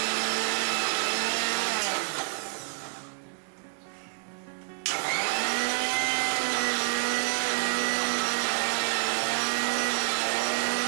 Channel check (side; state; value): left; silent; digital silence